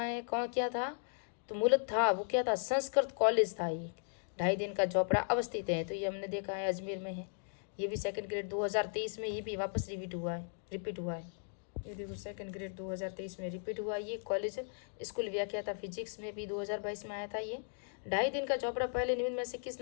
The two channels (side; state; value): right; silent; digital silence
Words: है, कौन क्या था? तो मूलत था वो क्या था? संस्कृत कॉलेज था ये। 2.5 दिन का झोपड़ा अवस्थित है। तो ये हमने देखा है अजमेर में है। ये भी सेकंड ग्रेड 2023 में ये भी वापस रिपीट हुआ है। ये देखो सेकंड ग्रेड 2023 में रिपीट हुआ। ये कॉलेज स्कूल व्याख्या था फिजिक्स में भी 2022 में आया था। ये 2.5 दिन का चौपड़ा पहले निम्न में से किस